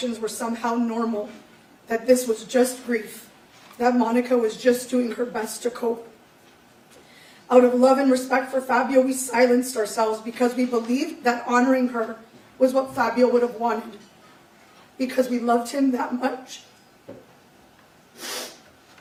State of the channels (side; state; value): both; identical; correlation 1.00